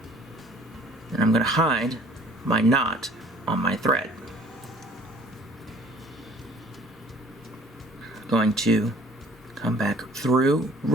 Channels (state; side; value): normal; both; correlation 0.53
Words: and I'm going to hide my knot on my thread. Going to come back through